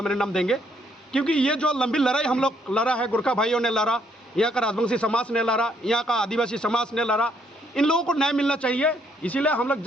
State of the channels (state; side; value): normal; both; correlation 0.70